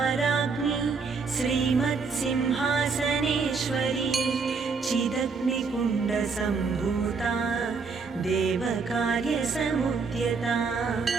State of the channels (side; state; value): left; quieter; 4.8 dB